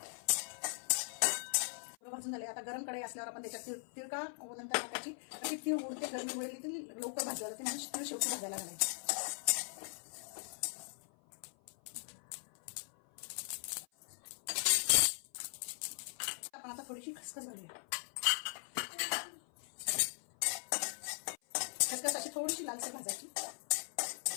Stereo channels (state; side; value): silent; right; 51 dB below the other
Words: भाजून झाले। आता गरम कढई असल्यावर आपण त्याच्यात तीळ का नंतर टाकायची। अशी तीळ उडते गरमी वेळेली ती लवकर भाजायला लागते, म्हणजे तीळ शेवटी भाजायला घालायची। आपण आता थोडीशी खसखस घालूया। खसखस अशी थोडीशी लालसर भाजायची।